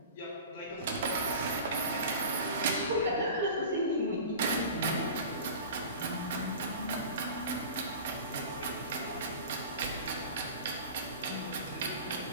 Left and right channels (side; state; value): both; inverted; correlation -0.36